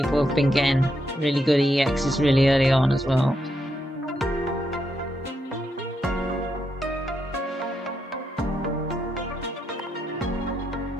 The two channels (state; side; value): normal; both; correlation 0.81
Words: have been getting really good EXs really early on as well.